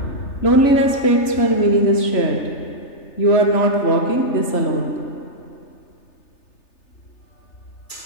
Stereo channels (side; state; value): right; late; 3.3 ms